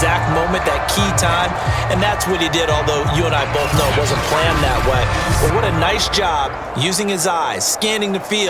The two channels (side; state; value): both; identical; correlation 1.00